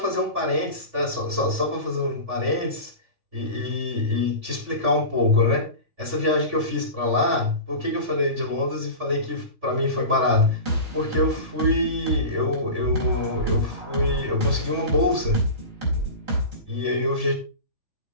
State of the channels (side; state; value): left; late; 3.5 ms